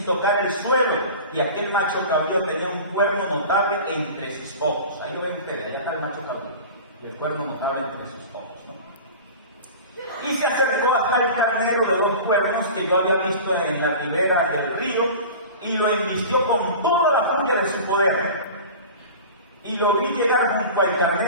tocar el suelo, y aquel macho cabrío tenía un cuerno notable entre sus ojos. Ahí lo ven ustedes, allá está el macho cabrío, y el cuerno notable entre sus ojos, ¿no? Y se acercó hasta el carnero de 2 cuernos que yo había visto en la ribera del río, y lo embistió con toda la furia de su poder. Y lo vi llegar junto al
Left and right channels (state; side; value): inverted; both; correlation -0.36